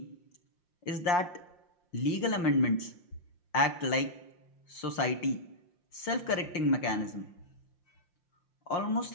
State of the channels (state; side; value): late; right; 5.7 ms